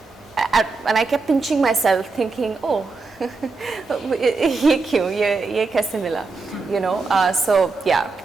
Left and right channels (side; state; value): left; quieter; 4.0 dB